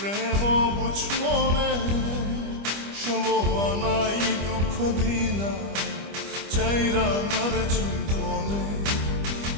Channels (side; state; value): left; late; 25 ms